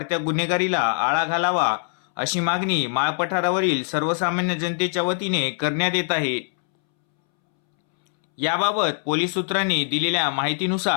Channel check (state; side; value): silent; right; 64 dB below the other